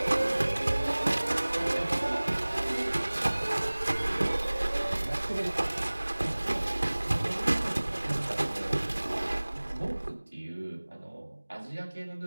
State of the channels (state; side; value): inverted; both; correlation -1.00